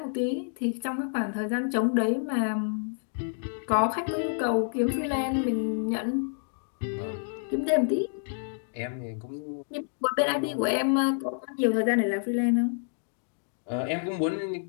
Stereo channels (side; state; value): right; silent; digital silence